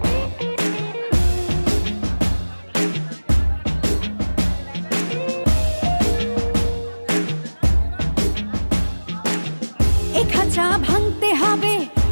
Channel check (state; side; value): inverted; both; correlation -1.00